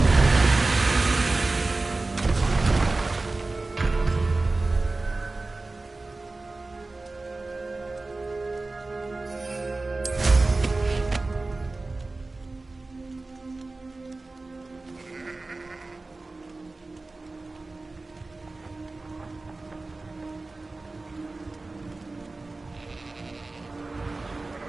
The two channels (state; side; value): quieter; left; 3.3 dB